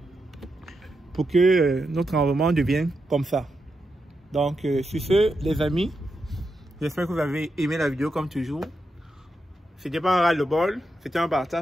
pour que notre environnement devienne comme ça. Donc sur ce, les amis, j'espère que vous avez aimé la vidéo comme toujours. C'était pas un ras-le-bol, c'était un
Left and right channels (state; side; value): normal; both; correlation 0.85